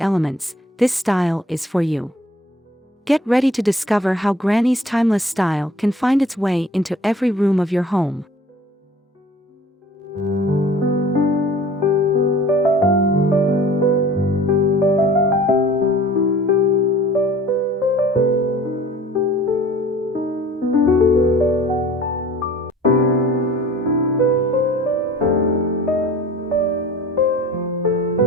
this style is for you. Get ready to discover how Granny's timeless style can find its way into every room of your home.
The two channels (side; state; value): both; normal; correlation 0.47